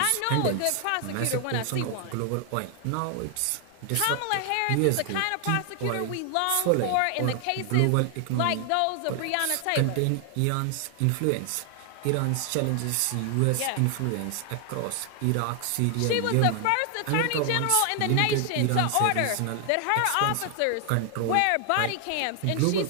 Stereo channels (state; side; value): different; both; correlation 0.00